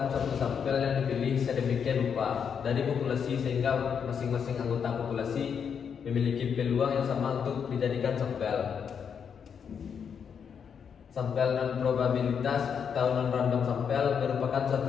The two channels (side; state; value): right; quieter; 7.1 dB